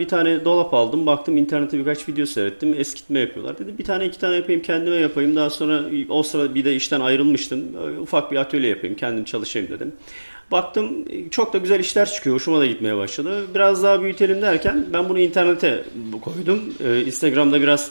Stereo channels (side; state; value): both; inverted; correlation -1.00